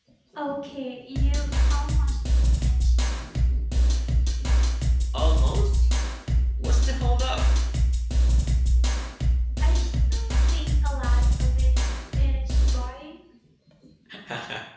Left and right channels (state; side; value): identical; both; correlation 1.00